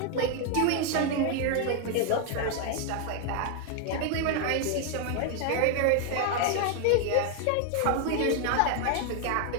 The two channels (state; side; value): different; both; correlation 0.01